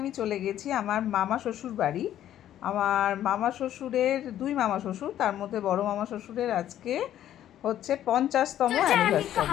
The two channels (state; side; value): quieter; right; 11.7 dB